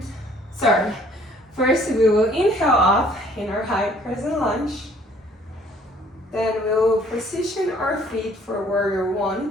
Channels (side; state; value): both; normal; correlation 0.58